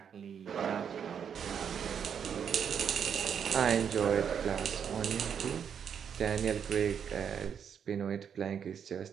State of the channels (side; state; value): left; quieter; 7.7 dB